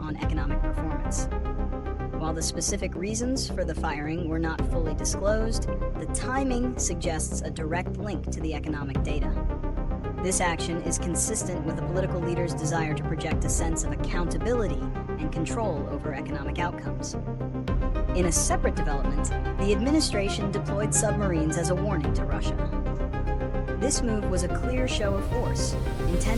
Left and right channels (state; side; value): identical; both; correlation 1.00